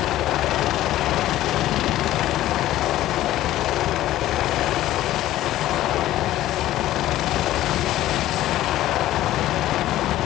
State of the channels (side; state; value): right; quieter; 14.3 dB